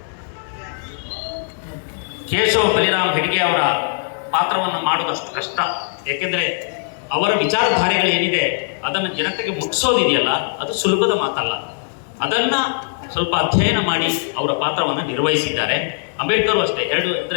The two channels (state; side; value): silent; right; digital silence